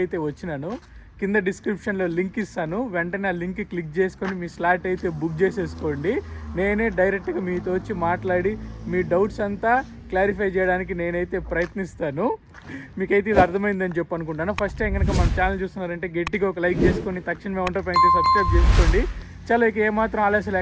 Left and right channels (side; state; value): both; identical; correlation 1.00